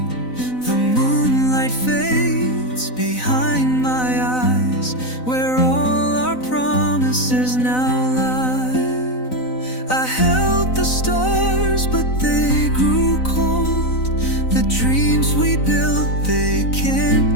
The moonlight fades behind my eyes, where all our promises now lie. I held the stars, but they grew cold. The dreams we built, they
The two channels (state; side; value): late; right; 4.0 ms